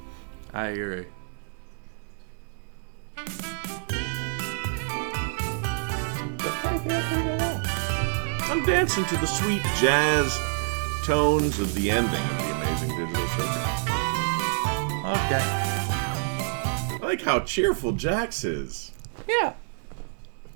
I agree. I'm dancing to the sweet jazz tones of the ending of the Amazing Digital Circus. Okay. I like how cheerful Jax is. Yeah.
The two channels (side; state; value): left; silent; digital silence